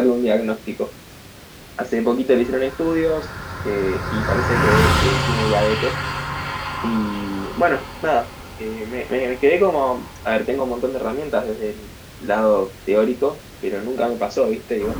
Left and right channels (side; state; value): both; identical; correlation 1.00